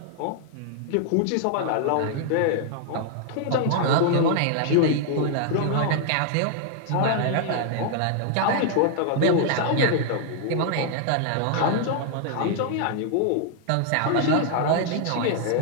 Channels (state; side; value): different; both; correlation 0.00